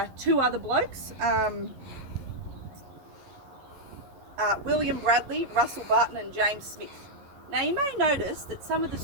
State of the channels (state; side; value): late; left; 11 ms